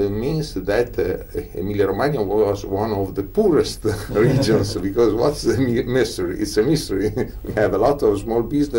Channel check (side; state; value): both; identical; correlation 1.00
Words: that Emilia-Romagna was one of the poorest regions, because what's the mystery? It's a mystery. We have a lot of small